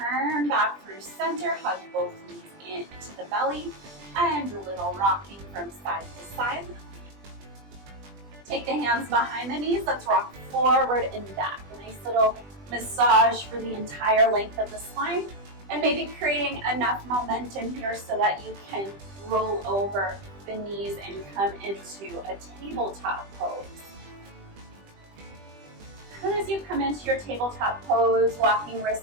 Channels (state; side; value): late; left; 20 ms